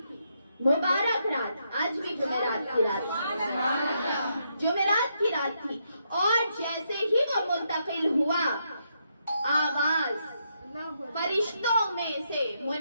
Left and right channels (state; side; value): inverted; both; correlation -0.79